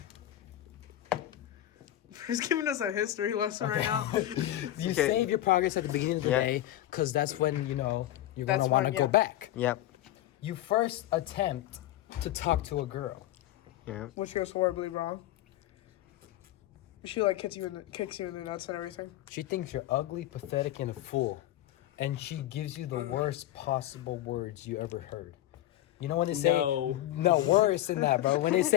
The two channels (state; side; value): quieter; right; 13.8 dB